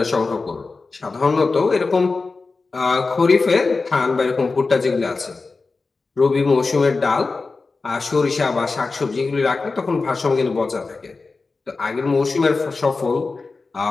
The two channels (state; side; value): quieter; right; 4.0 dB